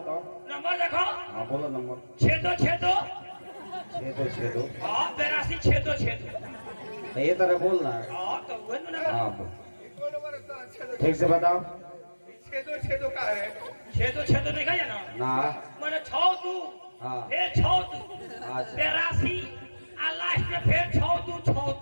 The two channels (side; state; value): both; inverted; correlation -1.00